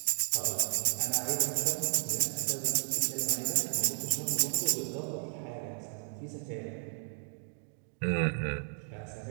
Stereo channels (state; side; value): silent; left; 56 dB below the other